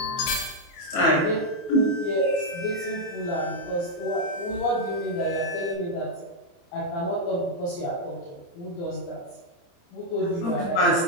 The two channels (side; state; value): right; late; 29 ms